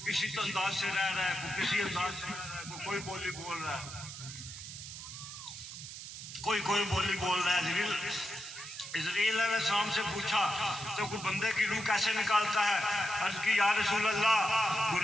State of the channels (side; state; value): right; noise; hiss, 11 dB below the sound